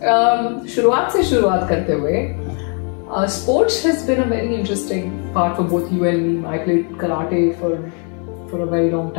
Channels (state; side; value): quieter; right; 39.1 dB